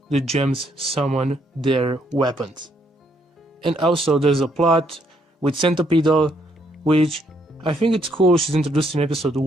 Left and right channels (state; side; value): normal; both; correlation 0.72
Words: the gems summon their weapons. And also there's a plot with Centipedal, which I think it's cool she's introduced in episode